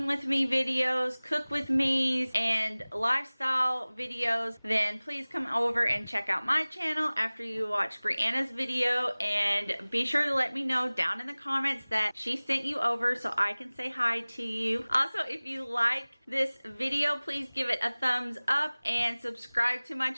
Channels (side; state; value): both; inverted; correlation -1.00